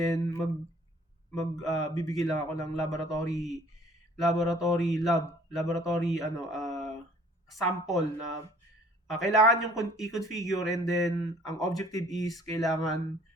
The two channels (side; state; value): both; normal; correlation 0.55